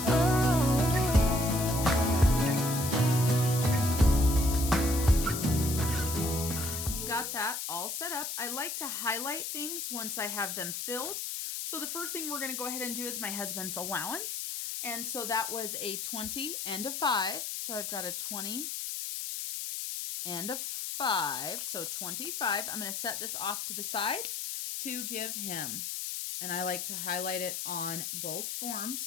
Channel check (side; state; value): left; noise; hiss, 4 dB below the sound